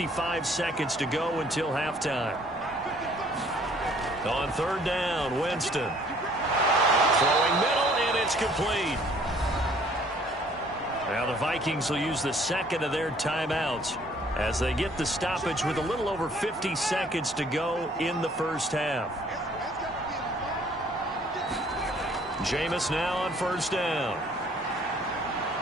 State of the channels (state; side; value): normal; both; correlation 0.59